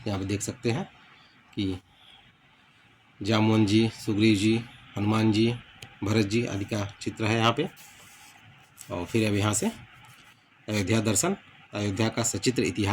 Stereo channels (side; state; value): both; identical; correlation 1.00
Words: यहाँ पे देख सकते हैं कि जामुन जी, सुग्रीव जी, हनुमान जी, भरत जी आदि का चित्र है यहाँ पे। और फिर अब यहाँ से अयोध्या दर्शन, अयोध्या का सचित्र